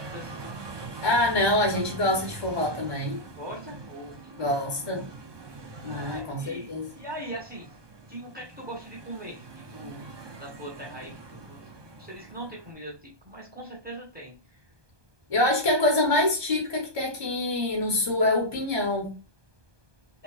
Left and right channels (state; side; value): late; left; 1.2 ms